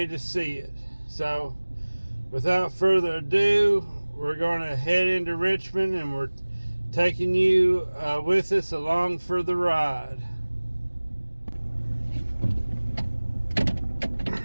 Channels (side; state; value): both; inverted; correlation -1.00